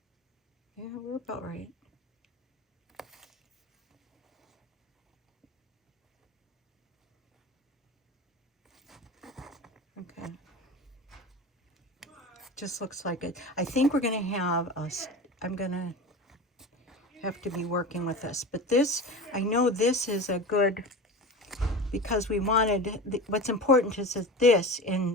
Yeah, we're about right. Okay. Just looks like it. I think we're going to have I'm going to have to be working with this. But this, I know this is a good, because we wanted, what's important is that this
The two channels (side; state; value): both; normal; correlation 0.31